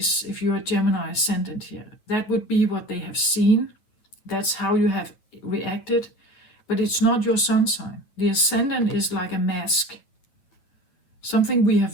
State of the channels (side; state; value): right; late; 9.3 ms